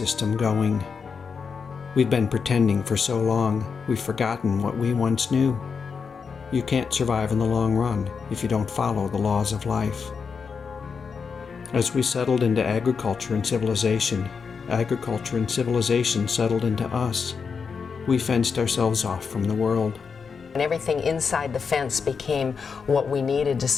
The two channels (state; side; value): quieter; right; 5.7 dB